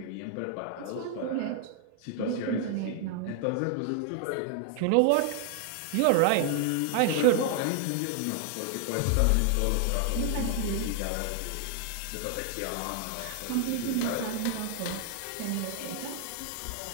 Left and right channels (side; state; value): both; different; correlation 0.00